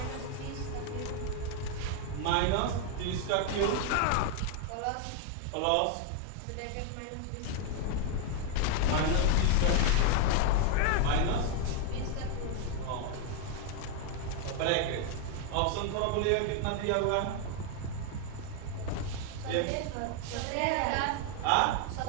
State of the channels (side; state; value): both; different; correlation 0.01